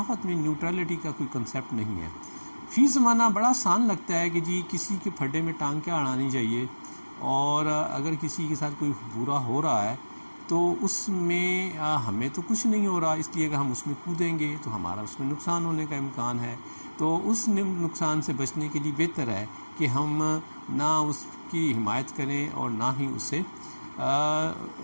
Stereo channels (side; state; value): both; inverted; correlation -1.00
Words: میں نیوٹرلٹی کا کوئی کنسیپٹ نہیں ہے۔ فی زمانہ بڑا آسان لگتا ہے کہ جی کسی کے پھڈے میں ٹانگ کیا اڑانی چاہیے، اور اگر کسی کے ساتھ کوئی برا ہو رہا ہے تو اس میں ہمیں تو کچھ نہیں ہو رہا، اس لیے اگر ہم اس میں کودیں گے تو ہمارا اس میں نقصان ہونے کا امکان ہے۔ تو اس نقصان سے بچنے کے لیے بہتر ہے کہ ہم نہ اس کی حمایت کریں اور نہ ہی اسے